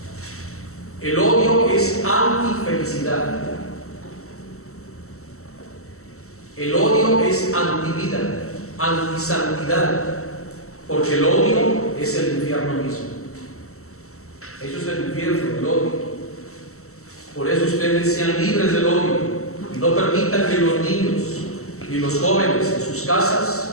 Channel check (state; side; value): late; right; 0.63 ms